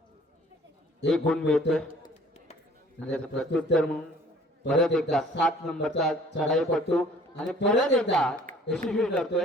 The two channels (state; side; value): normal; both; correlation 0.54